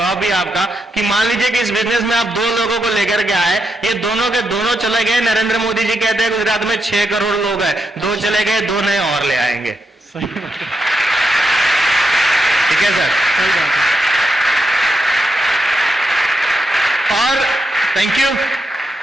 भी आपका, कि मान लीजिए कि इस बिजनेस में आप 2 लोगों को लेकर के आए, ये दोनों के दोनों चले गए। नरेंद्र मोदी जी कहते हैं गुजरात में 6 करोड़ लोग हैं, 2 चले गए, 2 नए और ले आएंगे। सही बात है, ठीक है सर, सही बात है। और थैंक यू।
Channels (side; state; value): both; normal; correlation 0.83